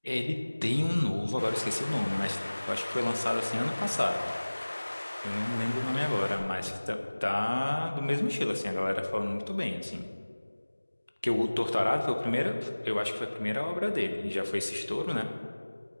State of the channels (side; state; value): both; inverted; correlation -1.00